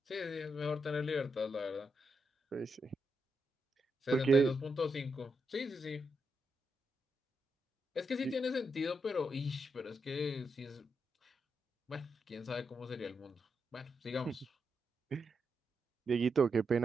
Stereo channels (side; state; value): both; normal; correlation 0.83